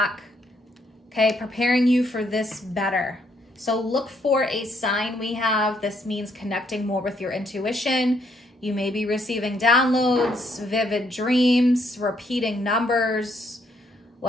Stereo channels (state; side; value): normal; both; correlation 0.71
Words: okay, preparing you for this better. So look for a sign. This means connecting more with your intuition. You may be receiving downloads, vivid dreams, repeating numbers,